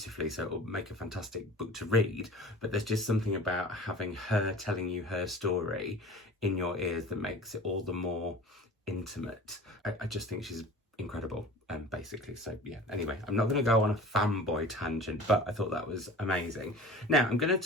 so it'll make a fantastic book to read, but there's just something about having her telling you her story in your ears that makes it all the more intimate. I just think she's incredible, basically. So yeah, anyway, I'm not going to go on a fanboy tangent, but I thought that was amazing. Now I'm going to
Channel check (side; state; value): both; normal; correlation 0.40